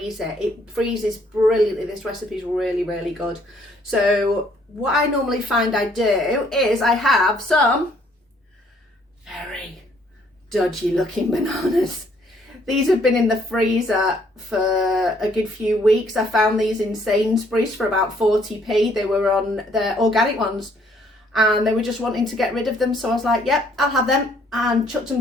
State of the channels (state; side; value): normal; both; correlation 0.65